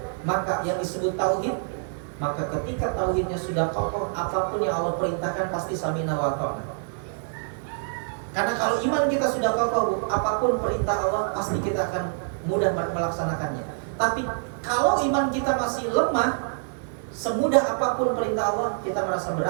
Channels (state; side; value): silent; left; digital silence